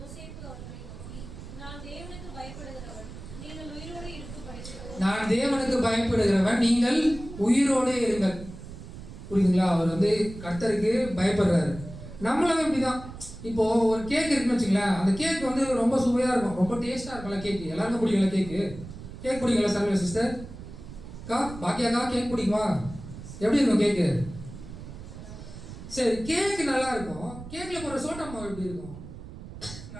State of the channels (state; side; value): noise; right; rumble, 13 dB below the sound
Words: அவர்களை நான் தேவனுக்கு பயப்படுகிறவன், நீங்கள் உயிரோடு இருக்க பயப்படுகிறவன். நான் தேவனுக்கு பயப்படுகிறவன், நீங்கள் உயிரோடே இருங்கள். புரியுதுங்களா? அவர் வந்து கர்த்தருக்கு பயப்படுறாரு. நம்மளும் இப்படிதான். இப்போ ஒரு கேக் இருக்குன்னு வச்சுங்களேன், அந்த கேக் வந்து ரொம்ப சுவையா இருக்கும், ரொம்ப டேஸ்டா இருக்கும்ல கேக்கு. எல்லாருக்கும் பிடிக்கல கேக்கு? கேக் பிடிக்கல சர்வே சிஸ்டர்? பாக்கியாக்கா கேக் பிடிக்குமா? எப்படி இருக்கும் கேக்கு? சரி, கேக்கு நல்லா இருக்கும். கேக்ல போற சோட்டா மாவு எப்படி இருக்கும்?